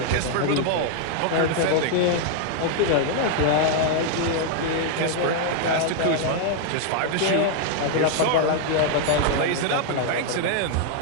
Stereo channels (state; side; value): different; both; correlation 0.00